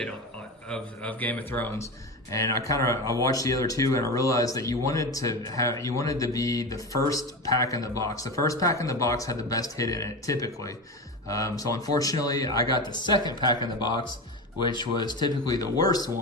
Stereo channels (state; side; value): normal; both; correlation 0.23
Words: of Game of Thrones. And I watched the other 2, and I realized that you wanted to be the first pack in the box. The first pack in the box had the best hit in it, typically. So unfortunately, I got the second pack in the box, which was typically the worst